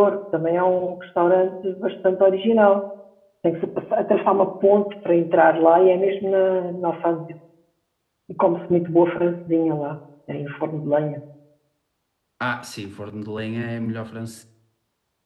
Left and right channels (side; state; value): both; identical; correlation 1.00